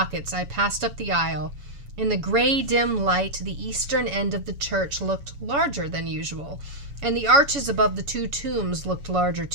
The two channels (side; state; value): left; late; 7.1 ms